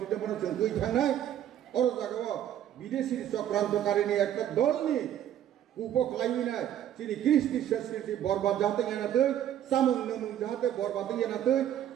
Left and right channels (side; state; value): left; quieter; 11.0 dB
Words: बन जों गै थांनाय और जागाव विदेशी चक्रान्तकारिनि একটা दलनि उपख्लायनाय चिनि कृष्टि संस्कृति बरबाद जाते यानादै सामुं नमुं जाते बरबाद यानादै